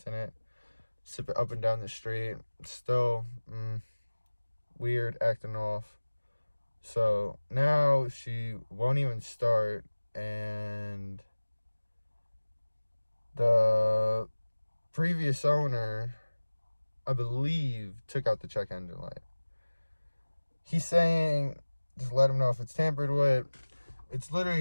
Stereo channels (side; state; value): both; inverted; correlation -1.00